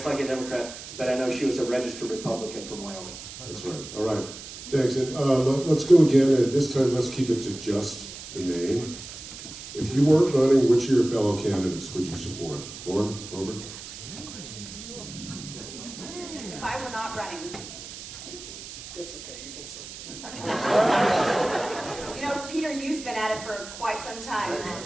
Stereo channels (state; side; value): noise; right; hiss, 12 dB below the sound